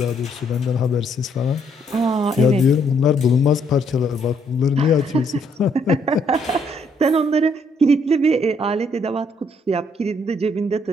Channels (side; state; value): both; normal; correlation 0.70